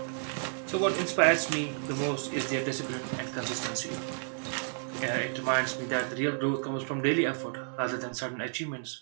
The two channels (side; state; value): left; silent; digital silence